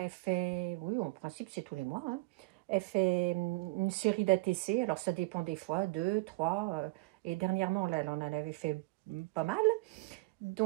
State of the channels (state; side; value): quieter; left; 24.4 dB